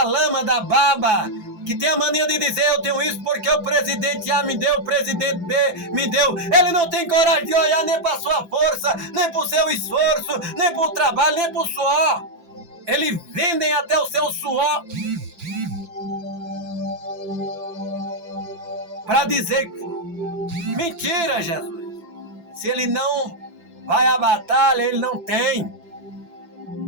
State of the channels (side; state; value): left; late; 5.9 ms